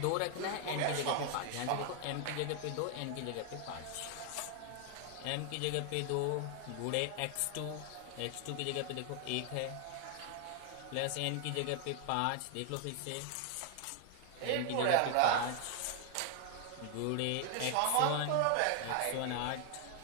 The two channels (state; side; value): different; both; correlation 0.00